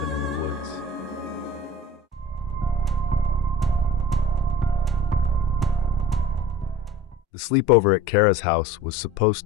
in the woods. The sleepover at Kara's house was supposed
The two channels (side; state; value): both; normal; correlation 0.43